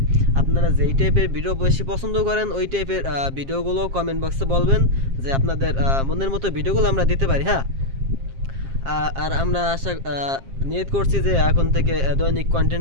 আপনারা যেই টাইপের ভিডিও বেশি পছন্দ করেন ওই টাইপের ভিডিওগুলো কমেন্ট বক্সে বলবেন যে আপনাদের মনের মতো ভিডিওগুলো আমরা দিতে পারি হ্যাঁ আর আমরা আশা নিয়ত করছি যে এখন থেকে দৈনিক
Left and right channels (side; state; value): left; late; 7.5 ms